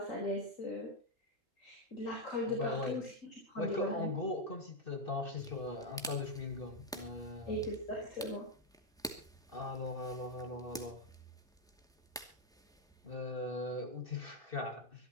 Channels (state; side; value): normal; both; correlation 0.03